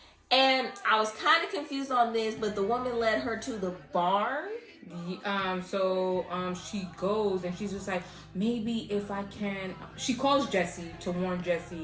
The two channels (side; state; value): both; identical; correlation 1.00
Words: And I was kind of confused on this, but the woman led her to the barn. So she goes and she's just like, maybe if I can. She calls Jesse to warn